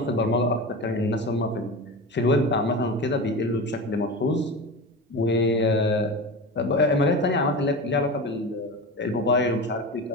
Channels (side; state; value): both; normal; correlation 0.26